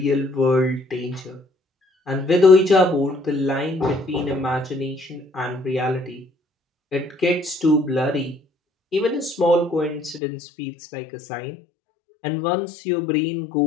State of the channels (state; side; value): drops out; right; at 10.2 s